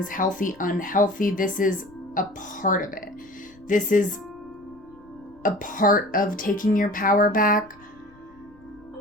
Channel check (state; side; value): noise; left; rumble, 27 dB below the sound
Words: healthy, unhealthy. This is a part of it. This is a part of taking your power back.